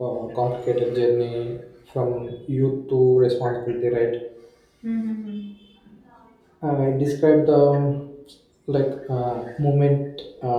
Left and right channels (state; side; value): identical; both; correlation 1.00